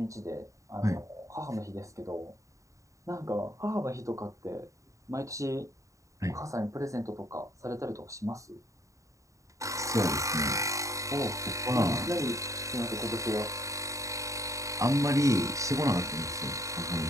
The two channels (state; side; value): late; left; 0.16 ms